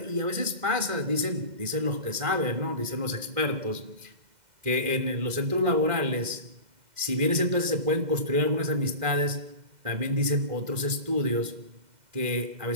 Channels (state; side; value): late; left; 2.1 ms